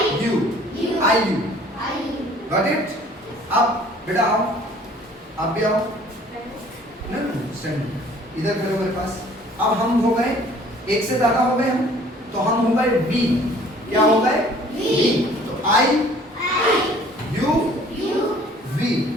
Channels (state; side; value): normal; both; correlation 0.54